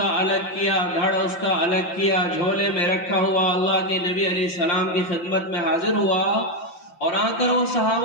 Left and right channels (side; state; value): right; late; 5.8 ms